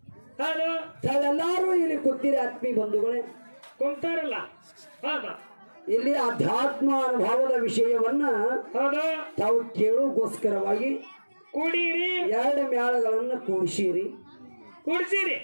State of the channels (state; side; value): inverted; both; correlation -1.00